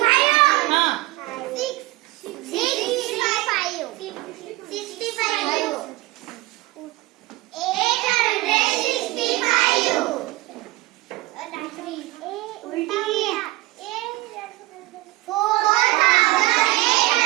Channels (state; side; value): quieter; left; 20.3 dB